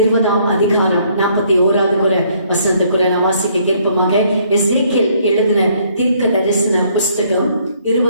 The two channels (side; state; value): both; inverted; correlation -0.65